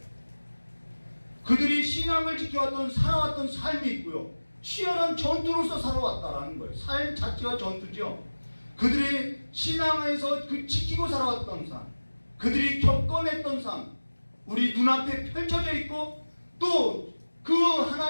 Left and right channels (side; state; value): both; inverted; correlation -1.00